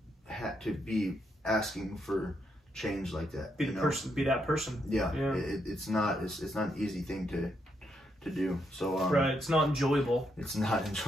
be asking for change like that. Be that person. Yeah. It's not an easy thing to do. So right, it's not enjoyable. It's not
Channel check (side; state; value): both; normal; correlation 0.78